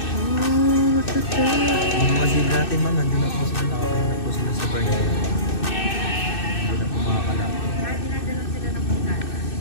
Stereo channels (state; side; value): late; right; 2.6 ms